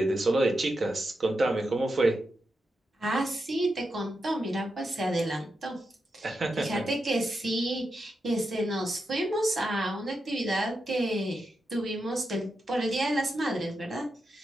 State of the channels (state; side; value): normal; both; correlation 0.87